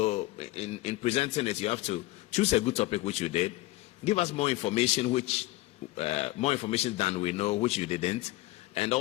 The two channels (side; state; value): right; quieter; 18.8 dB